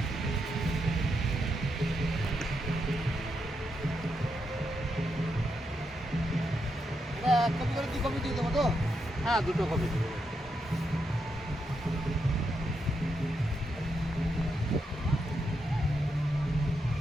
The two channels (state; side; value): normal; both; correlation 0.82